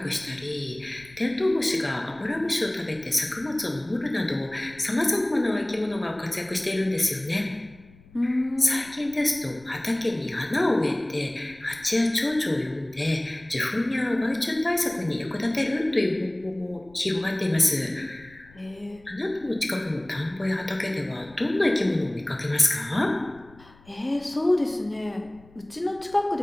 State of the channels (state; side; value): noise; left; rumble, 25 dB below the sound